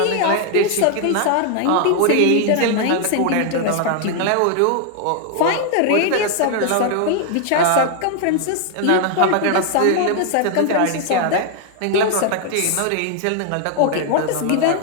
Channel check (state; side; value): different; both; correlation 0.00